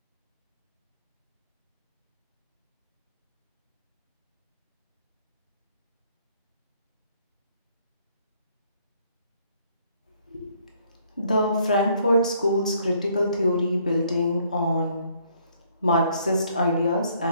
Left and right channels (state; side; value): inverted; both; correlation -0.66